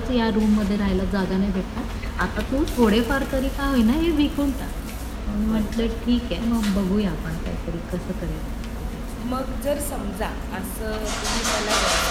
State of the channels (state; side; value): identical; both; correlation 1.00